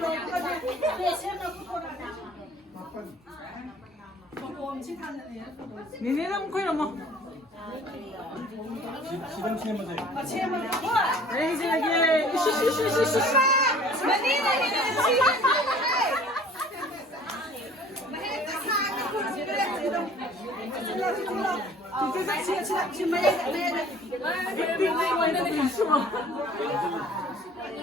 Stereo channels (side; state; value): both; normal; correlation 0.50